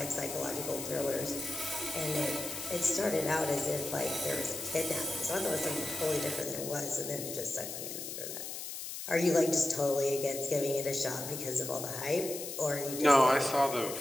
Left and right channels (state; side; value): noise; left; hiss, 7 dB below the sound